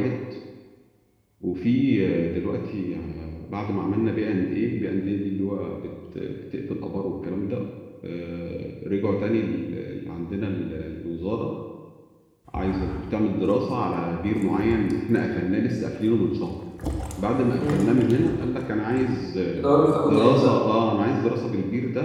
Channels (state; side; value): identical; both; correlation 1.00